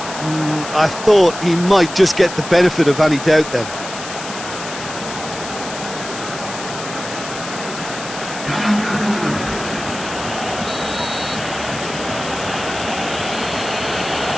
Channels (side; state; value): left; noise; hiss, 10 dB below the sound